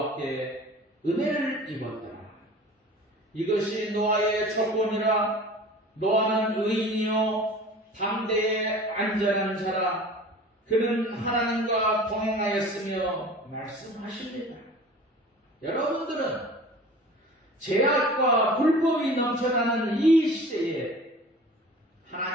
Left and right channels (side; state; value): both; normal; correlation 0.42